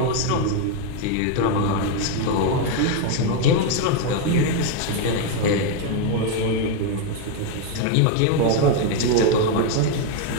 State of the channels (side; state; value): both; different; correlation 0.01